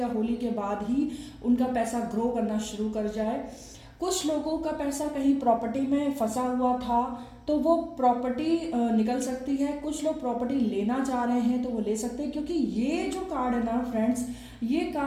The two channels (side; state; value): both; identical; correlation 1.00